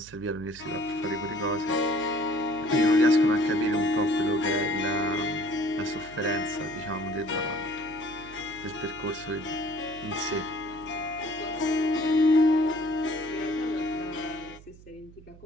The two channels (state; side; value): noise; right; hum, 21 dB below the sound